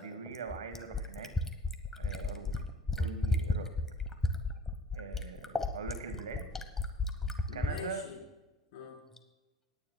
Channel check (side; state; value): both; normal; correlation 0.47